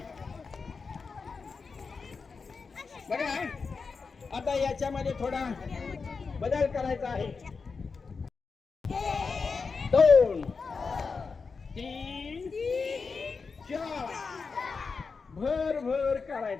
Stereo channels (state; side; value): quieter; right; 4.9 dB